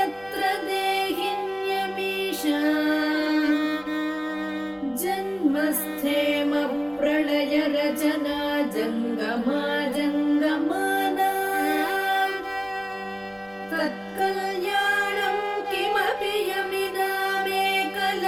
देहिन्यमीशा जन्मस्थेम प्रलय रचना जङ्गमा जङ्गमाना तत्कल्याणं किमपि यमिनामेकलक्ष्यं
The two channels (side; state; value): both; identical; correlation 1.00